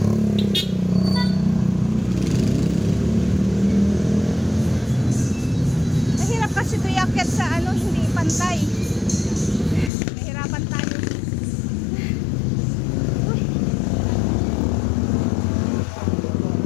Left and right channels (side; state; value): right; drops out; at 9.9 s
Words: Mahirap kasi ito iakyat sa ano, hindi pantay. Mahirapan tayo.